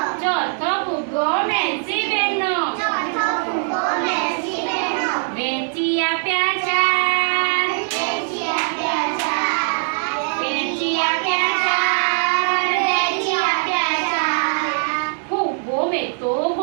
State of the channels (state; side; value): silent; left; 65 dB below the other